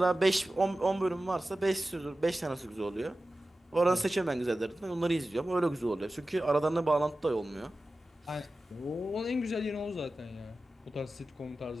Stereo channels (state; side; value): normal; both; correlation 0.95